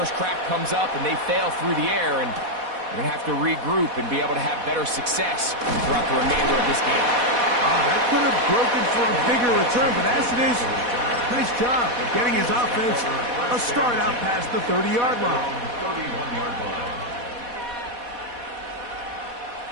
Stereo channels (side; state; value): left; late; 4.1 ms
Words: crack comes up and they fail through the air, and we're going to have to regroup and be able to have better success throughout the remainder of this game. That could have broken for a bigger return, but as it is, nice job of getting his offense a start out past the 30-yard line. 31-yard line.